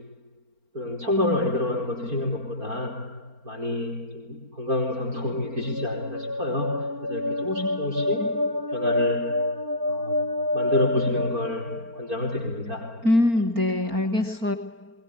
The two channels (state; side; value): late; left; 4.4 ms